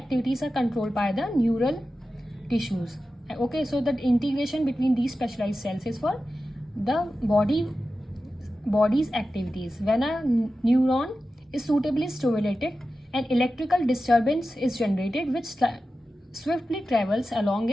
are controlled by the neural tissues. Okay, so the integration between these specialized cells is for the body's activities. When a neuron is suitably stimulated, an electrical disturbance is generated which swiftly travels along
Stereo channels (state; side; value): normal; both; correlation 0.93